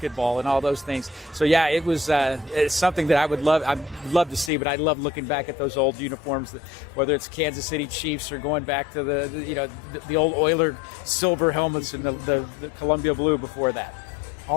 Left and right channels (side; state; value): right; drops out; at 4.5 s